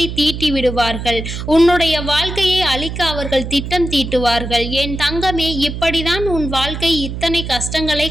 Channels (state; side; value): noise; right; hum, 6 dB below the sound